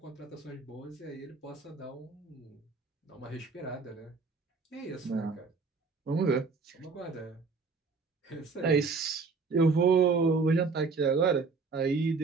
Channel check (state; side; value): quieter; left; 4.5 dB